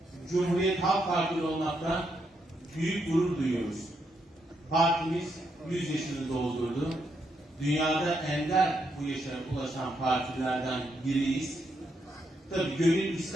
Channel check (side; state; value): both; normal; correlation 0.79